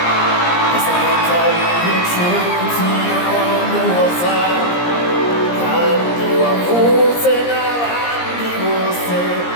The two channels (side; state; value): right; late; 17 ms